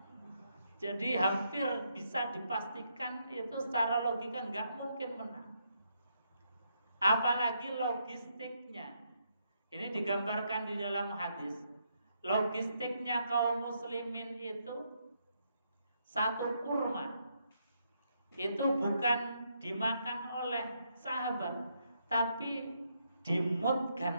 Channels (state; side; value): inverted; both; correlation -0.77